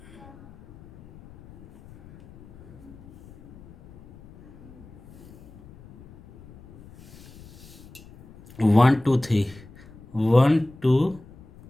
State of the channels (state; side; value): noise; left; rumble, 22 dB below the sound